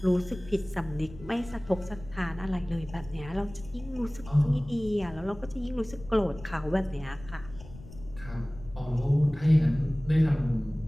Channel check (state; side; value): noise; left; rumble, 17 dB below the sound